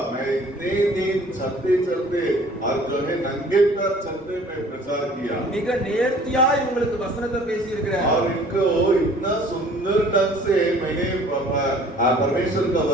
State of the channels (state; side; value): normal; both; correlation 0.52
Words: मैं इतने दिन चलते चलते और जो है नंगे पैर चलते मैं प्रचार किया மிக நேர்த்தியா இவங்களுக்கு வசனத்தை பேசி இருக்கிறேன், और इनको इतना सुंदर ढंग से मैंने परमेश्वर का